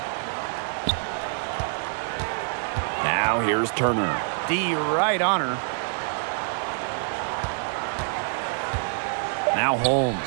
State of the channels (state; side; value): silent; left; digital silence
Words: Now here's Turner. D right on her. Now Holmes.